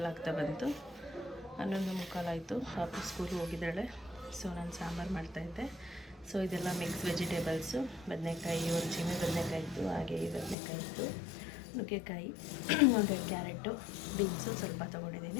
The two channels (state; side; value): drops out; right; at 10.6 s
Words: ಆಗ್ತಾ ಬಂತು. 11:45 ಆಯಿತು. ಪಾಪು ಸ್ಕೂಲ್ಗೆ ಹೋಗಿದ್ದಾಳೆ. ಸೊ ನಾನು ಸಾಂಬಾರು ಮಾಡ್ತಾಯಿದ್ದೆ. ಸೊ ಇದೆಲ್ಲ ಮಿಕ್ಸ್ ವೆಜಿಟೇಬಲ್ಸು. ಬದನೆಕಾಯಿ, ಒಂದು ಚಿಮ್ಮಿ ಬದನೆಕಾಯಿ ಇತ್ತು, ಹಾಗೆ ಈ ಬದನೆಕಾಯಿ ಇತ್ತು, ನುಗ್ಗೆಕಾಯಿ, ಒಂದು ಕ್ಯಾರೆಟು, ಬೀನ್ಸು ಸ್ವಲ್ಪ